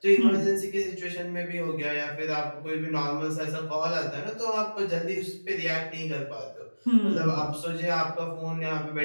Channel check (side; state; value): both; inverted; correlation -1.00